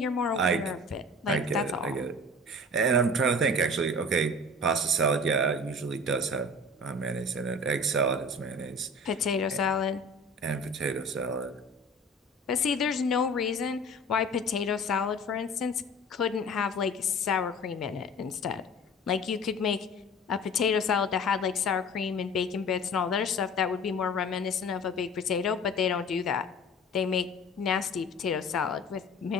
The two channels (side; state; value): both; normal; correlation 0.42